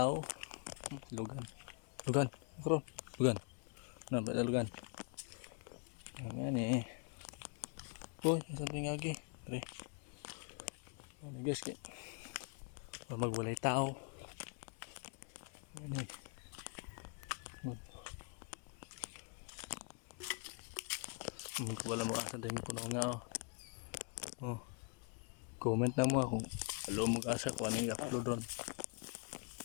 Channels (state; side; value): quieter; right; 37.6 dB